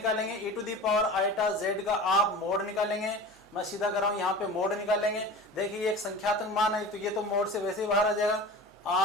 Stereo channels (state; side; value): normal; both; correlation 0.35